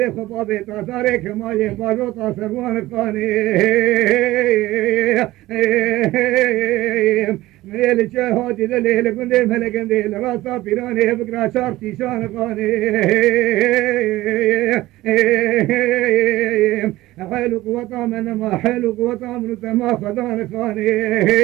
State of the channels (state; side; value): quieter; left; 17.2 dB